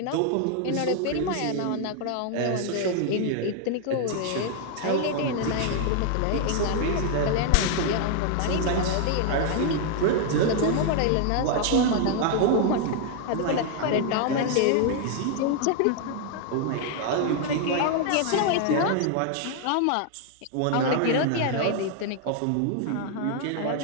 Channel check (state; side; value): different; both; correlation 0.00